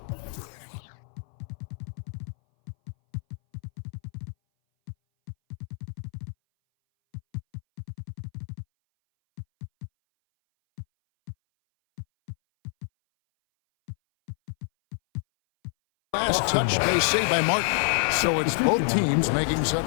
Last touch, they say, by Martin. So it's both teams making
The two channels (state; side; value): silent; right; 58 dB below the other